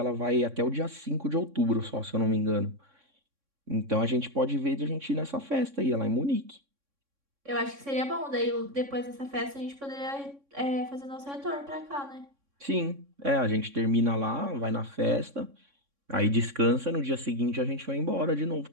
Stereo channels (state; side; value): late; left; 3.6 ms